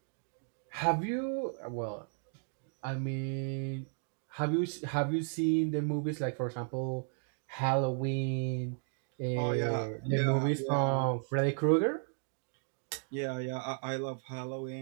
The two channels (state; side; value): silent; left; 55 dB below the other